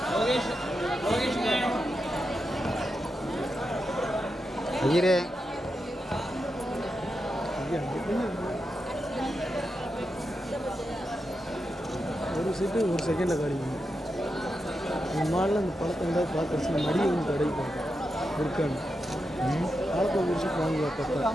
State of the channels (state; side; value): normal; both; correlation 0.87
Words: ஐயரே ஒரு சீட்டு ஒரு செகண்டில் கிடைக்கும். இந்த மாடல அந்த பழத்தை வந்து பார்த்துருச்சு மடியை வந்து கிடைக்கும் இருக்கான்னு பழத்தை ஒரு விஷயம் வாங்கி பார்த்தா